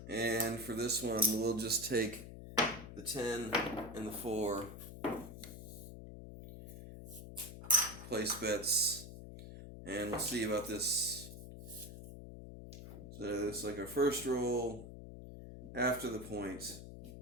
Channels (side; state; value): left; noise; hum, 12 dB below the sound